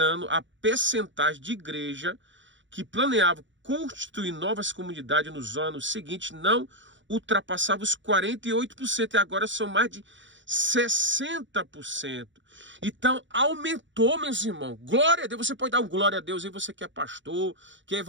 a percentagem de igreja que planeava constituir novas comunidades nos anos seguintes não ultrapassava os 48%, e agora são mais de 60%. Então aumentou, meus irmãos. Glória a Deus. Você pode dar um glória a Deus aí, você que é pastor, que é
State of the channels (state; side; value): late; left; 0.54 ms